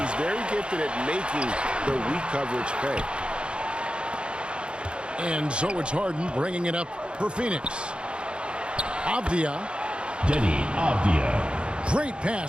very gifted at making the weak coverage pay. And so it's Harden bringing it up for Phoenix. Avdia. Denny Avdia. Great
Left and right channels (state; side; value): late; left; 0.055 ms